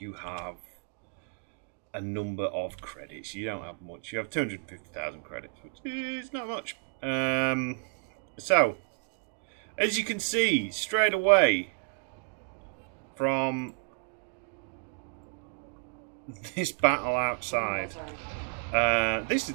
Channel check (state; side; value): quieter; left; 34.3 dB